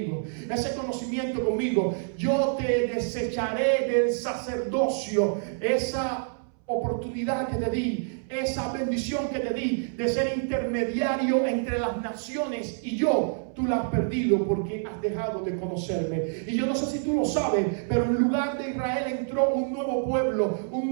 ese conocimiento conmigo, yo te desecharé del sacerdocio. Esa oportunidad que te di, esa bendición que te di de ser intermediario entre las naciones y yo, tú la has perdido porque has dejado de conocerme. Y yo no sé si tú lo sabes, pero en lugar de Israel entró un nuevo pueblo,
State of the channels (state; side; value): silent; left; 60 dB below the other